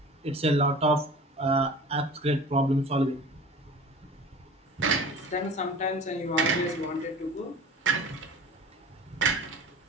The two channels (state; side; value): normal; both; correlation 0.40